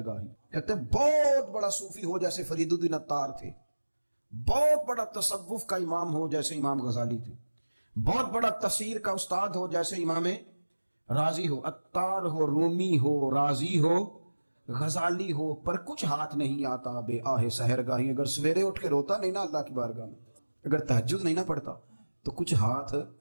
گاہی۔ کہتے ہیں بہت بڑا صوفی ہو جیسے فرید الدین عطار تھے، بہت بڑا تصوف کا امام ہو جیسے امام غزالی تھے، بہت بڑا تفسیر کا استاد ہو جیسے امام رازی ہو، عطار ہو، رومی ہو، رازی ہو، غزالی ہو، پر کچھ ہاتھ نہیں آتا بے آہ سحر گاہی۔ اگر سویرے اٹھ کے روتا نہیں نا اللہ کی بارگاہ میں، اگر تہجد نہیں نہ پڑھتا، تو کچھ ہاتھ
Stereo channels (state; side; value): inverted; both; correlation -1.00